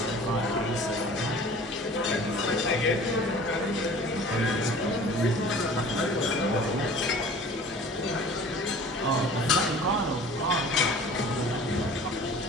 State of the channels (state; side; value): normal; both; correlation 0.45